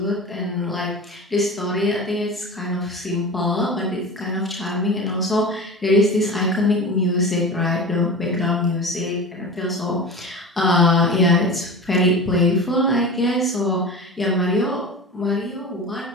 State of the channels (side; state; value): both; normal; correlation 0.32